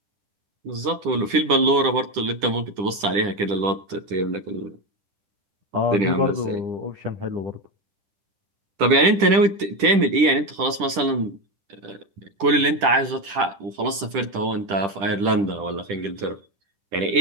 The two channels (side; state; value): left; late; 10 ms